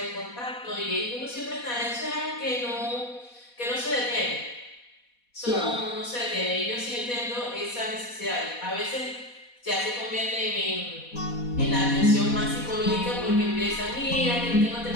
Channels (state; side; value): late; right; 4.1 ms